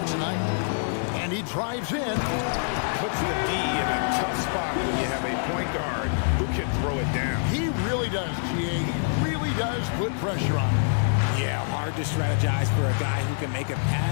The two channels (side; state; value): right; silent; digital silence